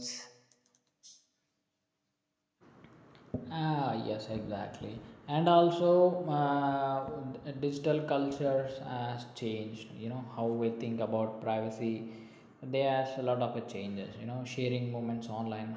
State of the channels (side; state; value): both; identical; correlation 1.00